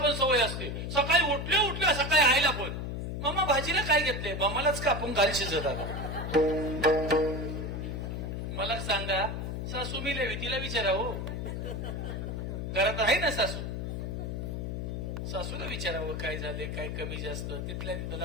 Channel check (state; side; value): noise; left; hum, 4 dB below the sound